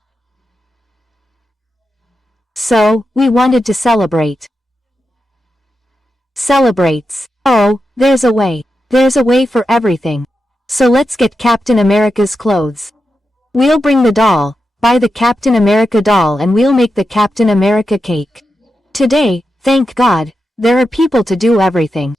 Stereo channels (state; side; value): normal; both; correlation 0.88